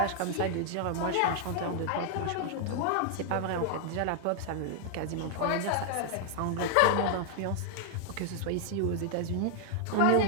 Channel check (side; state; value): both; different; correlation 0.00